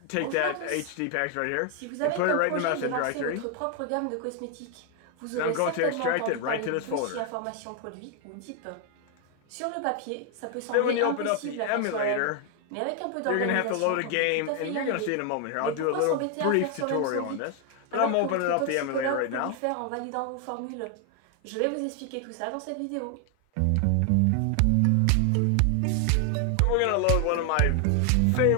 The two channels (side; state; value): both; different; correlation 0.00